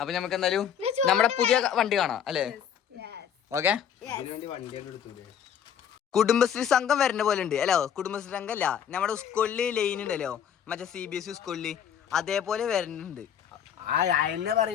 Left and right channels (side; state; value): right; quieter; 8.7 dB